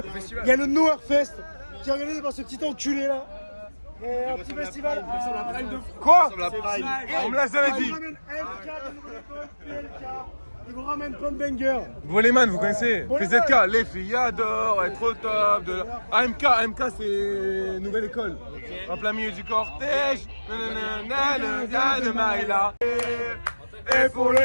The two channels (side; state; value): both; inverted; correlation -1.00